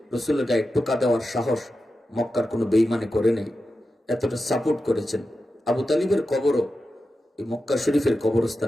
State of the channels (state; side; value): normal; both; correlation 0.91